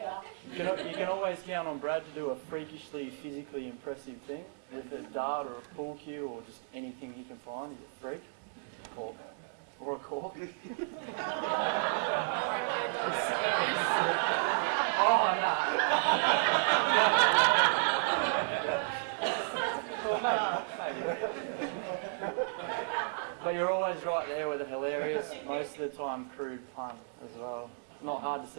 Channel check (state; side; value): silent; left; digital silence